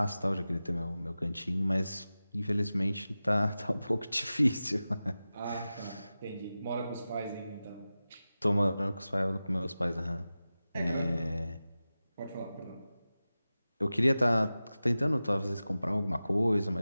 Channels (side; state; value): both; inverted; correlation -0.95